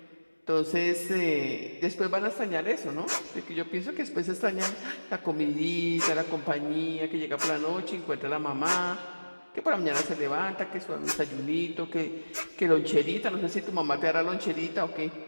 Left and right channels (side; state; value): both; inverted; correlation -1.00